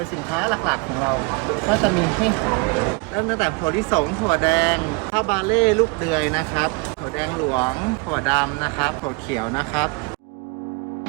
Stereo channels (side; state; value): left; quieter; 28.8 dB